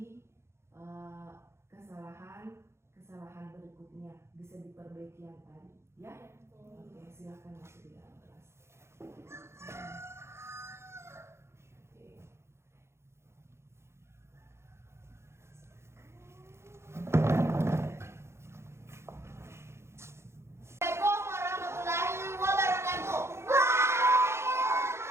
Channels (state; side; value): late; left; 0.13 ms